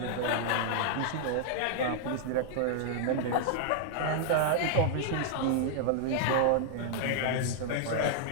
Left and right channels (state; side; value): different; both; correlation -0.01